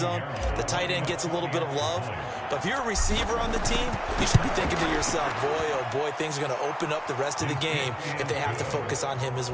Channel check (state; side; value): identical; both; correlation 1.00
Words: The tight end gets a little bit of love. But if you're a receiver on the team, you should be thinking to yourself, boy, oh boy, things are going to open up the rest of the game if they have to focus on him as